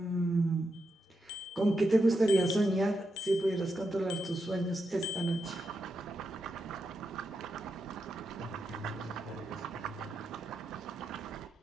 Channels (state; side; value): normal; both; correlation 0.85